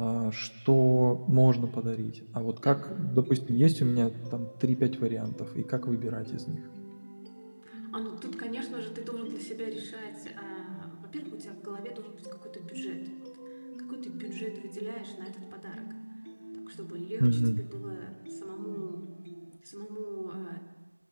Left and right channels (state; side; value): inverted; both; correlation -1.00